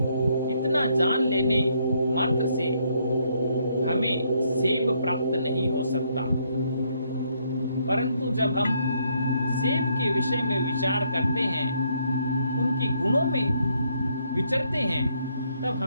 इतना जान लेने मात्र से हमें सेब प्राप्त नहीं हो सकता। परंतु जब हम सेब के विषय में विचार करते हैं, उनके गुणों में विचरते हैं, तब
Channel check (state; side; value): inverted; both; correlation -0.72